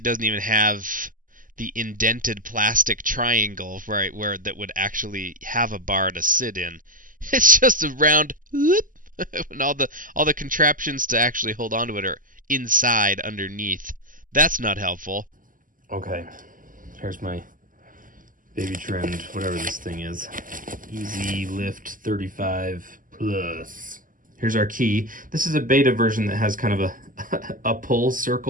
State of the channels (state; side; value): late; left; 0.39 ms